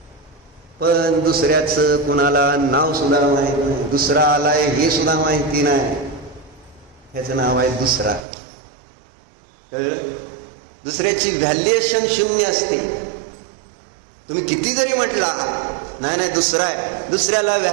पण दुसऱ्याचं कुणाला नाव सुद्धा माहित नाही. दुसरा आलाय हे सुद्धा माहिती नाही. ह्याचं नाव आहे दुसरा. दुसऱ्याची व्हॅल्युएशन 0 असते. तुम्ही किती जरी म्हटला नाही दुसरा आहे, दुसऱ्याला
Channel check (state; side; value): drops out; left; at 8.2 s